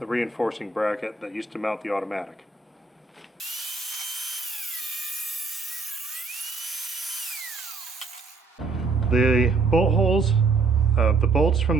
reinforcing bracket that used to mount the automatic. The bolt holes, the bolts from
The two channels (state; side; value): quieter; left; 4.0 dB